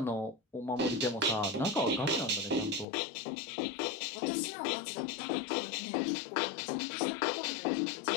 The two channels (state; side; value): drops out; right; at 2.9 s